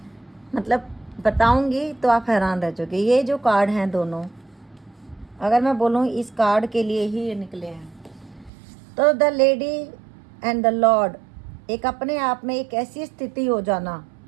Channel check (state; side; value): drops out; left; at 8.5 s